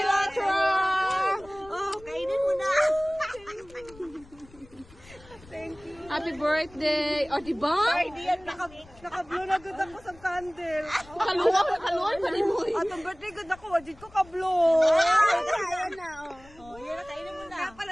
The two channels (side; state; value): left; noise; rumble, 23 dB below the sound